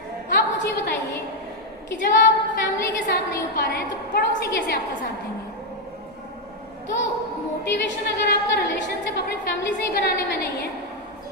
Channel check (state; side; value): normal; both; correlation 0.02